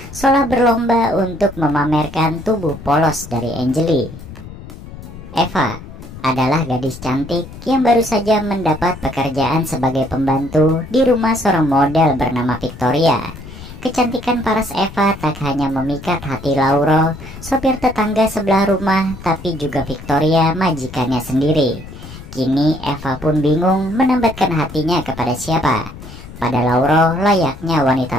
seolah berlomba untuk memamerkan tubuh polos dari Angelique. Eva adalah gadis cantik yang baru saja mendapat pekerjaan sebagai pembantu di rumah seorang model bernama Victoria. Kecantikan paras Eva tak hanya memikat hati Lauro, sopir tetangga sebelah rumah, tapi juga Victoria, majikannya sendiri. Kini Eva pun bingung menambatkan hatinya kepada siapa. Pada Lauro layaknya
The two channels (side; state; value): left; noise; rumble, 15 dB below the sound